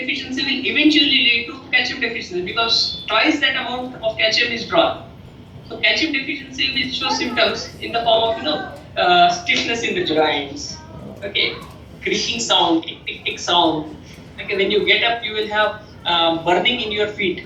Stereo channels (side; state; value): both; identical; correlation 1.00